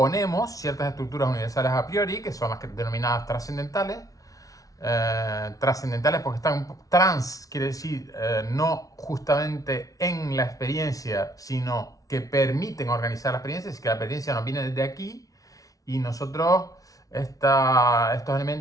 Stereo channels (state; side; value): late; right; 0.17 ms